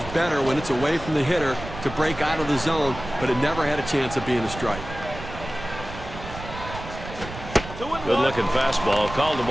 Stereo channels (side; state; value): right; noise; rumble, 11 dB below the sound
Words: better when it's away from the hitter to break out of the zone, but it never had a chance of being a strike. Good-looking fastball. Called the